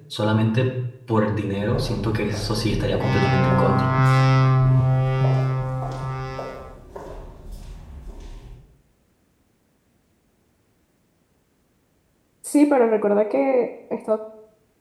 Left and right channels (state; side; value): identical; both; correlation 1.00